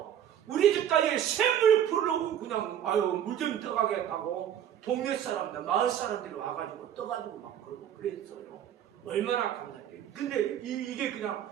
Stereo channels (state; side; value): quieter; left; 10.0 dB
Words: 우리 집까지 샘을 풀려고 그냥 물 좀 떠가겠다고 동네 사람들 마을 사람들이 와가지고 떠가지고 막 그러고 그랬어요. 얼마나 감사해요. 근데 이게 그냥